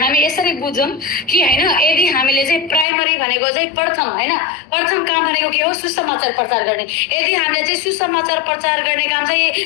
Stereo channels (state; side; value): drops out; right; at 2.9 s